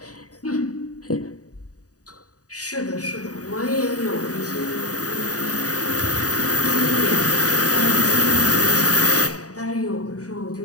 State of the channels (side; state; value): right; late; 0.67 ms